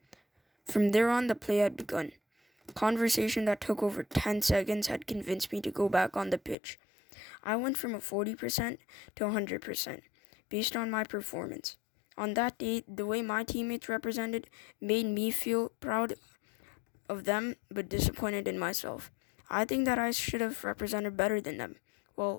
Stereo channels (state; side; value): drops out; right; at 6.6 s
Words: From there on, the play had begun. Conversation that took over 10 seconds had convinced me to go back on the pitch. I went from a 40% to 100% based on my performance. On that day, the way my teammates represented made me feel proud of them but disappointed in myself. I think that I should have represented better than them.